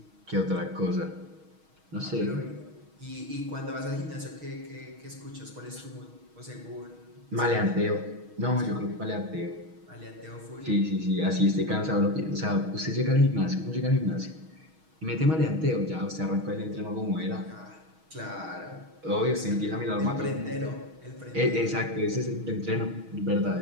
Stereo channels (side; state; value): left; late; 6.3 ms